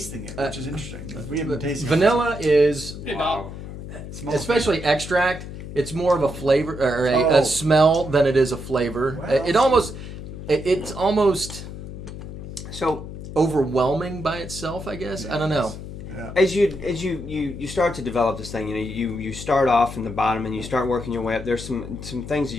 it, which is interesting. We haven't been tasting vanilla is, Hey, Bob. it. Smells especially extract, it's more of a flavor or Oh. a smell than it is a flavor. Well, It's almost So overwhelming by itself, I guess. I don't know. Yeah. as you start to develop this thing, you start off in the bottom and you start working your way up. There's some things that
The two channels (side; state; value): left; noise; hum, 10 dB below the sound